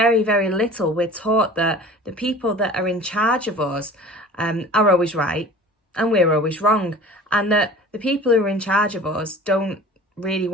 very little, we're taught that the people that are in charge of us are always right and we're always wrong. And that the people who are in charge of us don't really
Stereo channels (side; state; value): both; normal; correlation 0.42